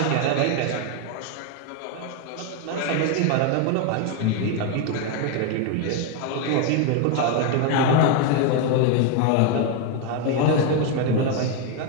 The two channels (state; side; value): different; both; correlation 0.01